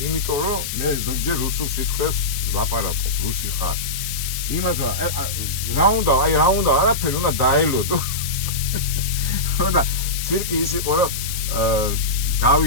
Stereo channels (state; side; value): noise; left; hiss, 5 dB below the sound